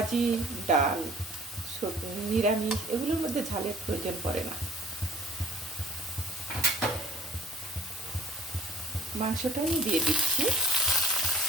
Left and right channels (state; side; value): normal; both; correlation 0.53